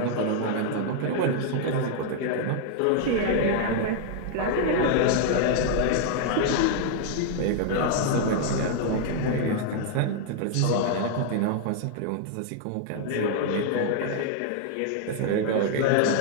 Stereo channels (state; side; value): different; both; correlation -0.01